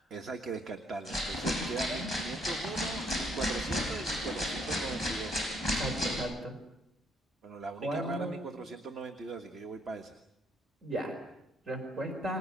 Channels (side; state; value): both; normal; correlation 0.68